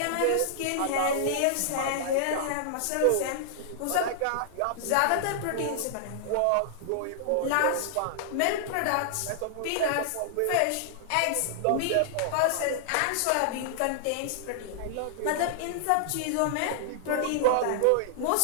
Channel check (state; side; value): different; both; correlation -0.01